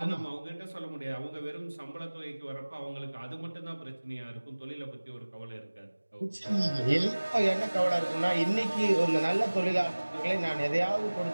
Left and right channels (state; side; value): inverted; both; correlation -1.00